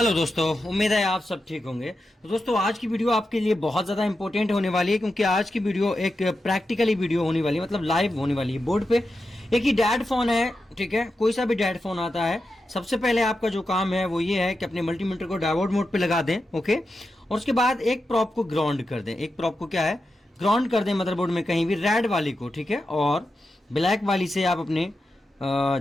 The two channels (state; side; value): normal; both; correlation 0.89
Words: दोस्तों, उम्मीद है आप सब ठीक होंगे। तो दोस्तों आज की वीडियो आपके लिए बहुत ज़्यादा इंपॉर्टेंट होने वाली है, क्योंकि आज की वीडियो एक प्रैक्टिकली वीडियो होने वाली है, मतलब लाइव होने वाली है। बोर्ड पे एक ही डैड फोन है, ठीक है, कोई सा भी डैड फोन आता है। सबसे पहले आपका जो काम है वो ये है कि अपने मल्टीमीटर को डायोड मोड पे लगा दें, ओके। और उसके बाद एक प्रॉप को ग्राउंड कर दें। एक प्रॉप को क्या है, ग्राउंड कर दें मदरबोर्ड में कहीं भी, रेड वाली को, ठीक है। और ब्लैक वाली से आप अपने